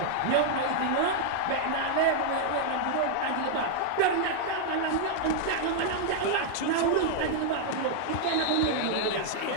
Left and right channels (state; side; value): different; both; correlation -0.01